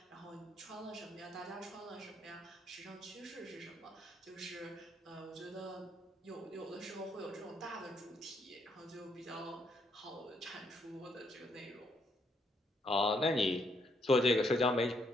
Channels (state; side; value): normal; both; correlation 0.73